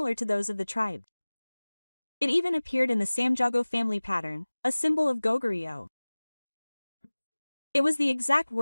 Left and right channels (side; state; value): both; inverted; correlation -1.00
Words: to those of the tribe. It even appeared in the Samjago family pattern, a symbol of Goguryeo. It was the exact